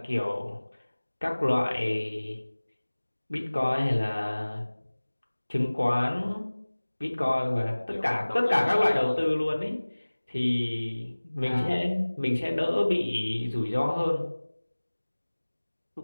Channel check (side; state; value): both; inverted; correlation -1.00